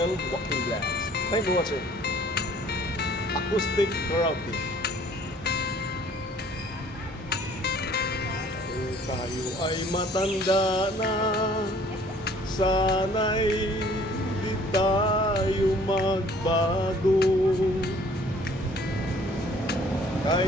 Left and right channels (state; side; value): normal; both; correlation 0.55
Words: Walking Vlogs. Thank you for watching. Acoustic karaoke. Kung tayo ay matanda na, sana'y di tayo magbago.